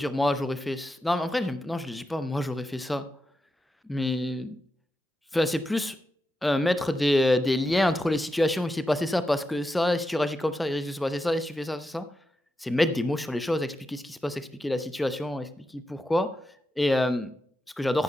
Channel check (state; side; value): normal; both; correlation 0.88